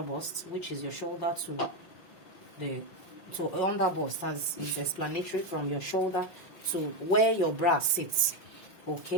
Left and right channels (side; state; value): right; late; 5.4 ms